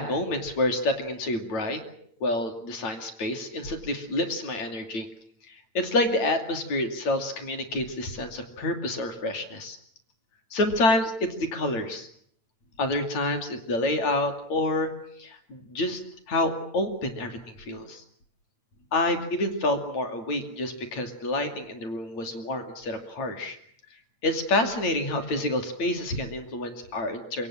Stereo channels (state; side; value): late; right; 8.9 ms